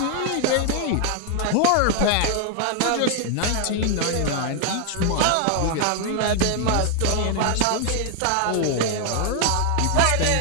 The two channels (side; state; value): both; different; correlation 0.00